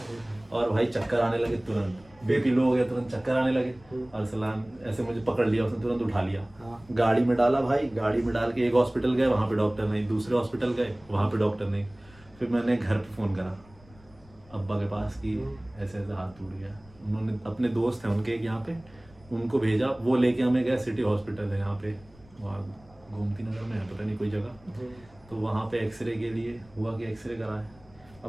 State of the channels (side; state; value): left; noise; rumble, 25 dB below the sound